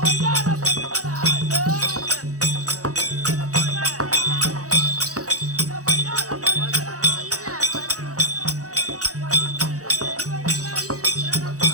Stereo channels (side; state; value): left; late; 0.66 ms